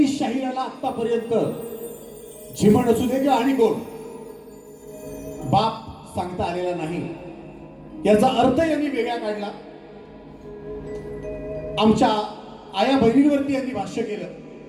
शाहिराला आतापर्यंत झिमण असू दे किंवा आणि कोण बाप सांगता आलेला नाही. याचा अर्थ यांनी वेगळा काढला. आमच्या आया बहिणींवरती यांनी भाष्य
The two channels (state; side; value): identical; both; correlation 1.00